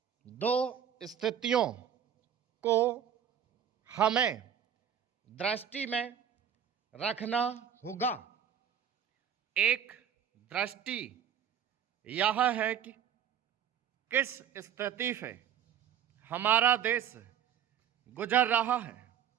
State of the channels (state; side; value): quieter; left; 8.9 dB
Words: दो स्थितियों को हमें दृष्टि में रखना होगा। एक दृष्टि यह है कि किस स्थिति से हमारा देश गुजर रहा है,